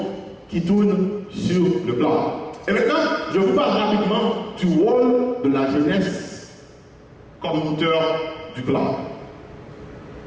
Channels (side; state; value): both; identical; correlation 1.00